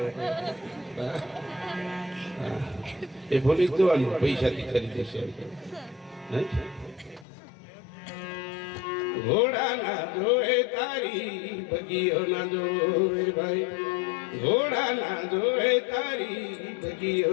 એ ભૂલી જ જવાનું પૈસાથી ખરીદે છે. ઘોડા ના જોએ તારી બગીઓ ના જોએ ભાઈ, ઘોડા ના જોએ તારી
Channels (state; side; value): drops out; right; at 7.2 s